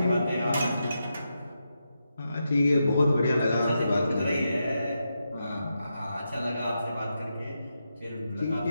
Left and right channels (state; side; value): inverted; both; correlation -0.86